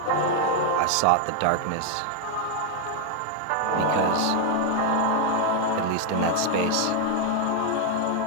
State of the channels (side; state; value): both; different; correlation 0.01